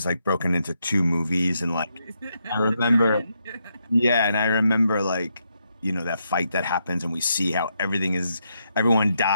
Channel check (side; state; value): both; inverted; correlation -0.80